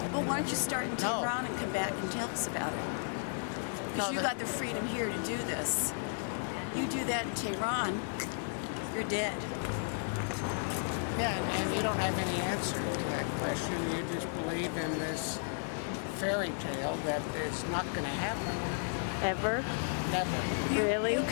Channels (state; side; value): silent; right; 55 dB below the other